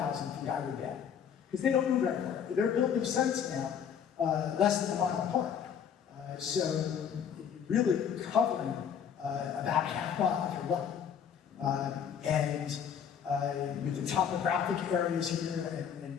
feet, I would bet. Because they don't move very far. They're building sites now less than a mile apart. So really covering about half mile if you're lucky. And with the topographic areas here and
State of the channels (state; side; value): quieter; right; 7.9 dB